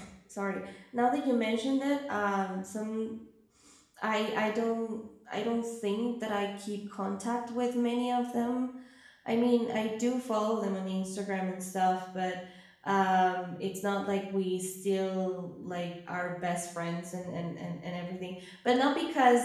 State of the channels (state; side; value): identical; both; correlation 1.00